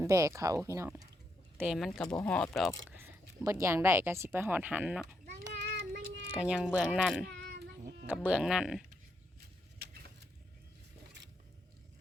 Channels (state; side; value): normal; both; correlation 0.79